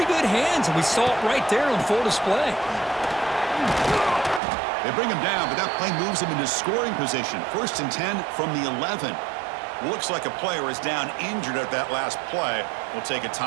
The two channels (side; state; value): left; drops out; at 4.4 s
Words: good hands, and we saw it right there on full display. They bring him down, but that play moves him into scoring position. 1st and 10 from the 11. Looks like a player is down injured at that last play. We'll take a